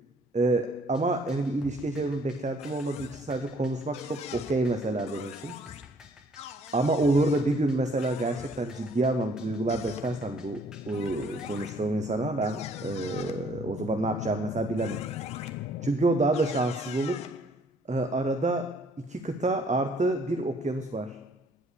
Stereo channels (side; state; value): both; normal; correlation 0.61